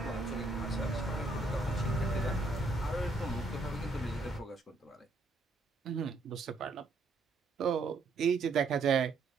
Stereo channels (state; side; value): quieter; left; 3.4 dB